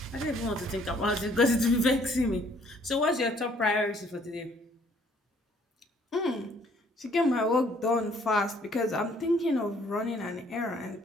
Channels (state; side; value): normal; both; correlation 0.62